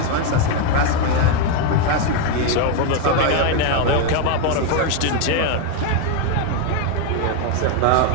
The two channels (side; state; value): both; different; correlation 0.02